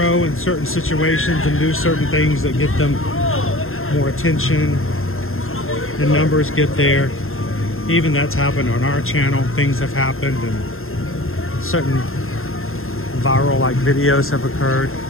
in certain situations and do certain things that get them more attention. The numbers get there. Even that's happened on our channel. Things have happened and certain viral like videos have occurred.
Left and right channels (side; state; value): right; late; 0.61 ms